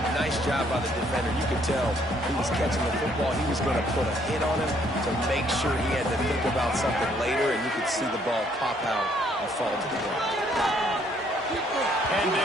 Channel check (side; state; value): both; normal; correlation 0.66